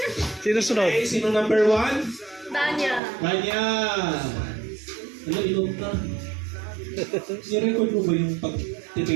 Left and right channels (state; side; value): drops out; left; at 3.0 s